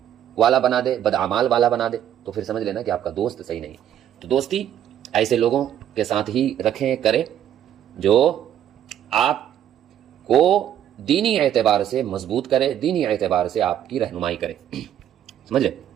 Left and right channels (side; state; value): left; quieter; 10.6 dB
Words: वाला बना दे, बदअमाल वाला बना दे, तो फिर समझ लेना कि आपका दोस्त सही नहीं। तो दोस्ती ऐसे लोगों के साथ ही रखें, करें جو آپ کو دینی اعتبار سے مضبوط کرے، دینی اعتبار سے آپ کی رہنمائی کرے. سمجھ رہے؟